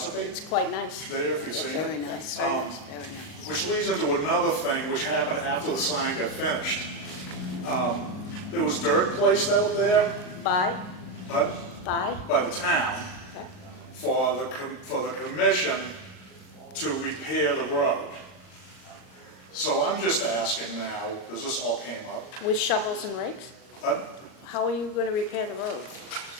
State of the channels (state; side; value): late; right; 38 ms